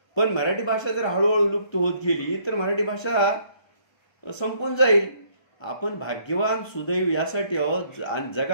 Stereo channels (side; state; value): right; late; 1.3 ms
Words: पण मराठी भाषा जर हळूहळू लुप्त होत गेली तर मराठी भाषा संपून जाईल. आपण भाग्यवान सुदैव यासाठी आहोत.